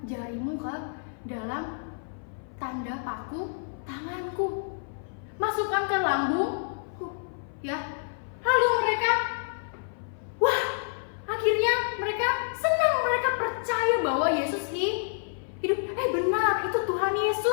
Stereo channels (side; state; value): right; silent; 55 dB below the other